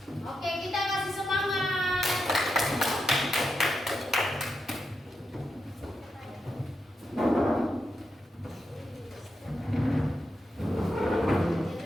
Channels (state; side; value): normal; both; correlation 0.86